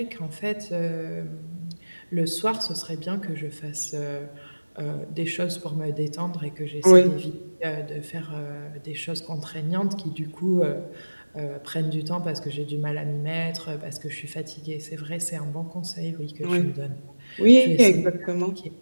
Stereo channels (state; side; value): inverted; both; correlation -1.00